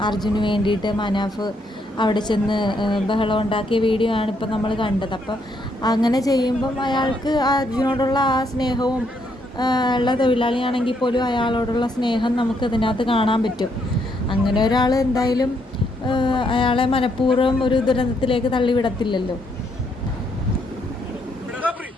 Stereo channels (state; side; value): normal; both; correlation 0.74